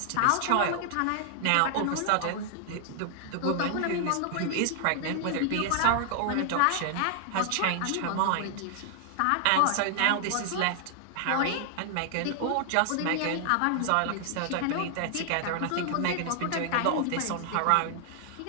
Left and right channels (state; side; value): different; both; correlation 0.00